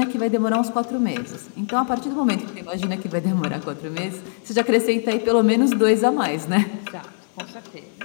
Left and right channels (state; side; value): silent; right; digital silence